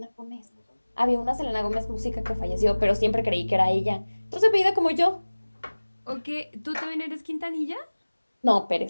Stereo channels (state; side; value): inverted; both; correlation -1.00